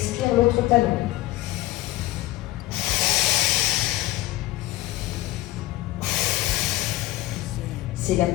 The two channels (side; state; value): right; quieter; 17.1 dB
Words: l'autre talon. C'est la